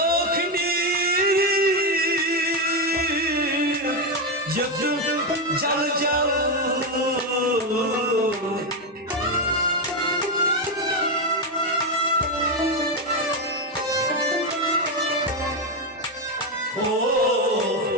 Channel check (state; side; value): normal; both; correlation 0.08